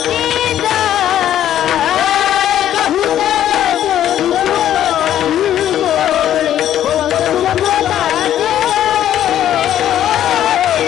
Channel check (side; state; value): right; quieter; 11.3 dB